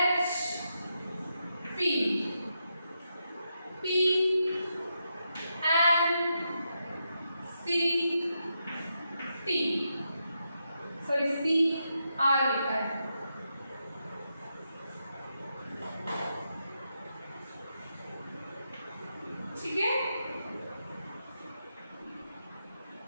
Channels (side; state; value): both; inverted; correlation -0.84